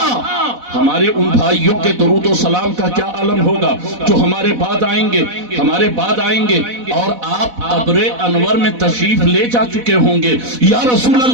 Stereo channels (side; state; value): left; late; 4.0 ms